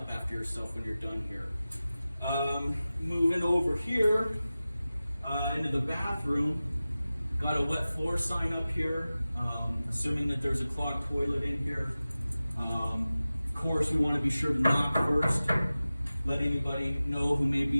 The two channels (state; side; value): inverted; both; correlation -0.96